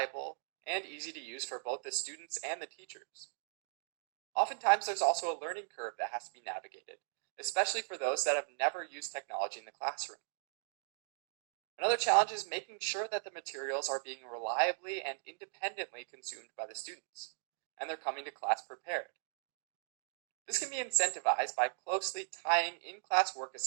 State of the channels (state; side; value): silent; left; digital silence